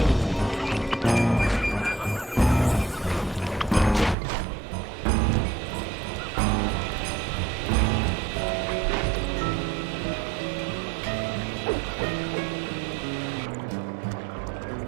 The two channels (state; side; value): drops out; left; at 4.2 s